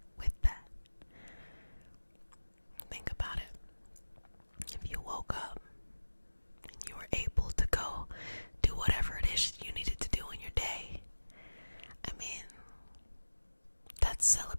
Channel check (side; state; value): both; inverted; correlation -1.00